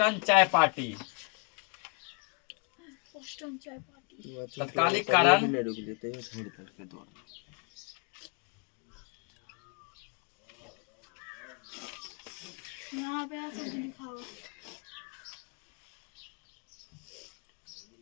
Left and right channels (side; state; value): right; quieter; 35.5 dB